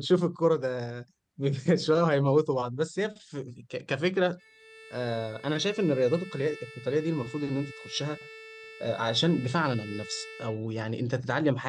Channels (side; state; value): both; identical; correlation 1.00